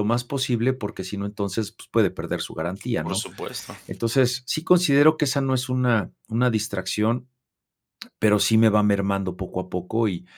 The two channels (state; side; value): identical; both; correlation 1.00